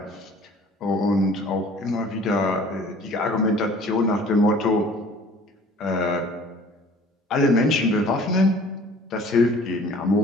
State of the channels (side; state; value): both; normal; correlation 0.50